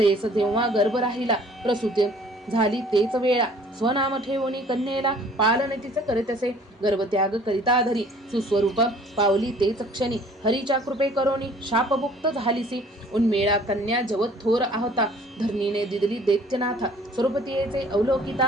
तेव्हा गर्भ राहिला प्रसूती झाली तेच वेळा स्वनाम ठेवणी कन्येला पालन तिचे करीतसे गर्भत्याग करिता धरी सुस्वरूप पावली तेच क्षणी हरीच्या कृपे करोनी शापमुक्त झालीसी उन्मेळा कन्या जवत थोर आहता धरणीने दिदली दैत्यनाथा स्वरूपतीयेचे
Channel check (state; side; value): normal; both; correlation 0.54